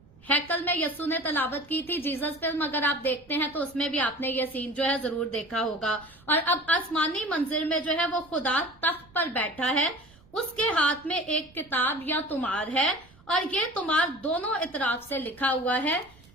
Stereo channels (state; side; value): noise; right; rumble, 26 dB below the sound